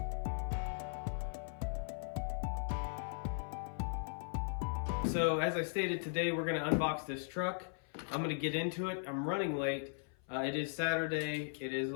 So as I stated, today we're going to unbox this truck. I'm going to get into it. I'm running late. It is Saturday. It is a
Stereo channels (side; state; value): right; silent; 52 dB below the other